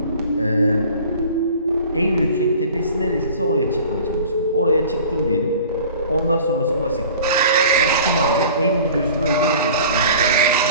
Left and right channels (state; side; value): inverted; both; correlation -0.44